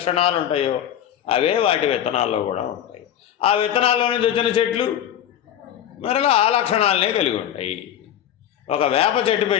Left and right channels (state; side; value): quieter; right; 10.5 dB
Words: ఉంటాయో అవే వాటి విత్తనాల్లో కూడా ఉంటాయి. ఆ విత్తనాల్లో నుంచి వచ్చిన చెట్లు మరలా ఆ లక్షణాలనే కలిగి ఉంటాయి. ఒక వేప చెట్టు